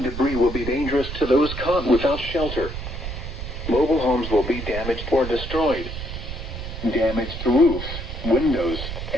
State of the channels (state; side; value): noise; right; rumble, 7 dB below the sound